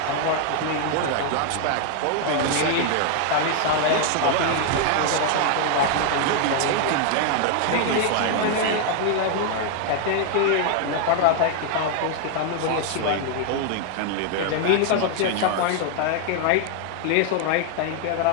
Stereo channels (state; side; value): different; both; correlation 0.00